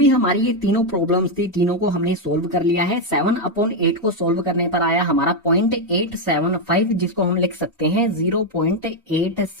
हमारी ये तीनों प्रॉब्लम्स थी तीनों को हमने सोल्व कर लिया है। 7/8 को सोल्व करने पर आया हमारा 0.875, जिसको हम लिख सकते हैं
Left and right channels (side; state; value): both; normal; correlation 0.04